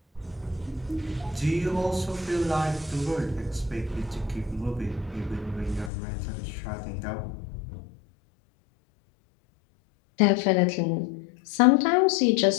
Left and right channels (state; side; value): drops out; right; at 5.9 s